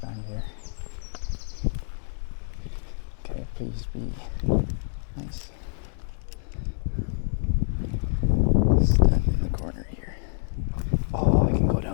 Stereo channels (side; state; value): right; silent; 60 dB below the other